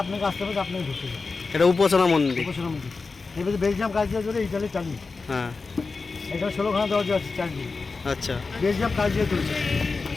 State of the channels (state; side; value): quieter; right; 4.2 dB